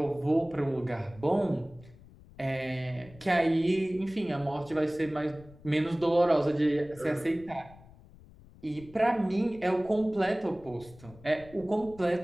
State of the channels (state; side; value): noise; left; rumble, 22 dB below the sound